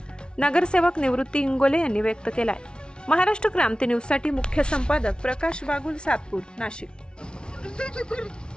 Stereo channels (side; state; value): right; late; 0.056 ms